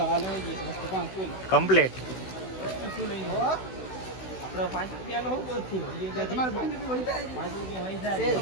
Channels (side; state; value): right; late; 16 ms